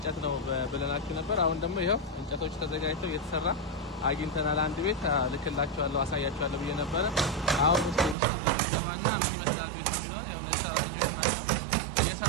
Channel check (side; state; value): left; drops out; at 8.2 s